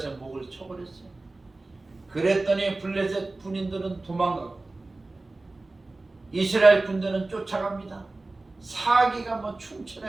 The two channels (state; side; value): quieter; left; 3.1 dB